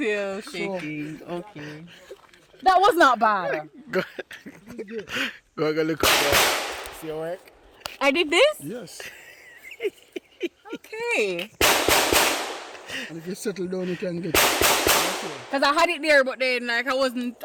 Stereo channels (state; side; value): identical; both; correlation 1.00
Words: shaking. Okay. That was not bad. Go look up there. See your work? I did this? Yes. Okay. And if you settle down, you can get Because I had it there, but then like I wasn't